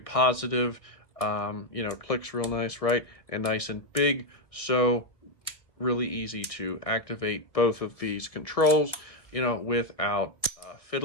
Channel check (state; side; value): late; right; 1.3 ms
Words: Clicks real nice, right? And nice and big. So really easy to activate both of these controls, without